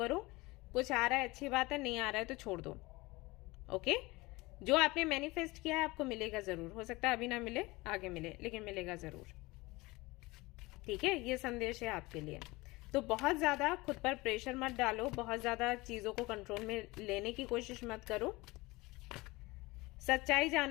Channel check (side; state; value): right; quieter; 22.1 dB